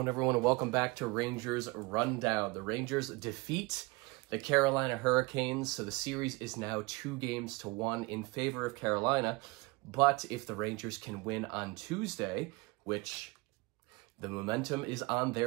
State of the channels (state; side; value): quieter; left; 24.6 dB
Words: everyone? And welcome back to Rangers Rundown. The Rangers defeat the Carolina Hurricanes, so the series is now 2-1 in favor of Carolina. But if the Rangers can win on Tuesday, which the momentum is on